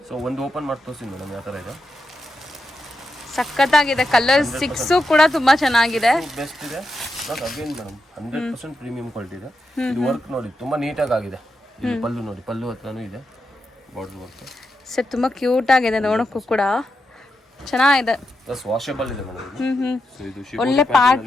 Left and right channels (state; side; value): normal; both; correlation 0.85